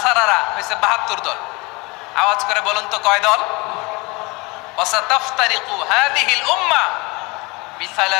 হয়েছে 72 দল। আওয়াজ করে বলুন তো, কয় দল? ওয়াসাতাফতারিকু হাযিহিল উম্মাহ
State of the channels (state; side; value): quieter; right; 26.0 dB